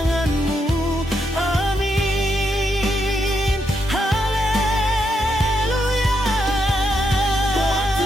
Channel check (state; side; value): normal; both; correlation 0.80